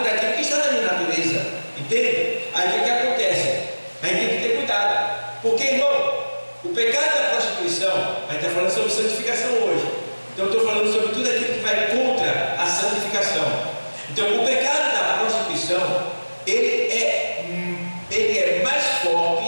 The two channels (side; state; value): both; inverted; correlation -1.00